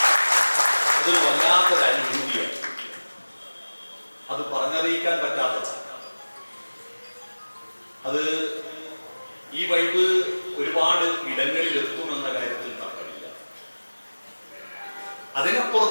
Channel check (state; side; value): inverted; both; correlation -1.00